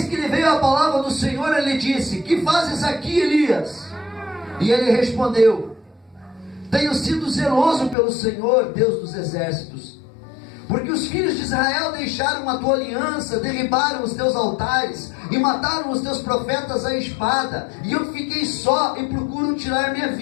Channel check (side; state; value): right; drops out; at 8.0 s